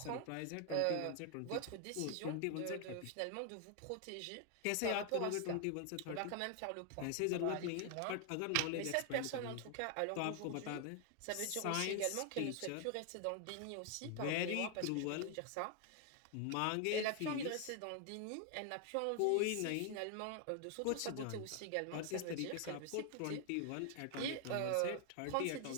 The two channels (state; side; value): different; both; correlation 0.00